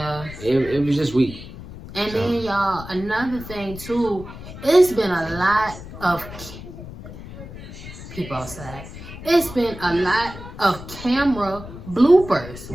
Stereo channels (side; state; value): left; noise; rumble, 13 dB below the sound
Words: it was just weak. And then y'all, another thing too, it's been a lot of people outside. It's been a lot of camera bloopers.